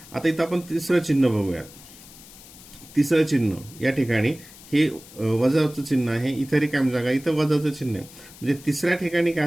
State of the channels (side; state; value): left; noise; hiss, 20 dB below the sound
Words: आता इथं आपण तिसरं चिन्ह बघूयात। तिसरं चिन्ह या ठिकाणी हे वजाचं चिन्ह आहे, इथं रिकामी जागा, इथं वजाचं चिन्ह आहे, म्हणजे तिसऱ्या ठिकाणी काय